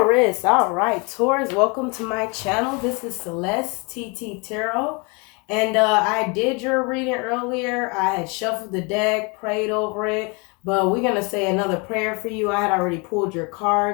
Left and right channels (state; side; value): quieter; right; 30.8 dB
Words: All right, Taurus, welcome to my channel. This is Celeste TT Tarot. And I did your reading earlier. I had shuffled the deck, prayed over it. But we're going to say another prayer for you. I had already pulled your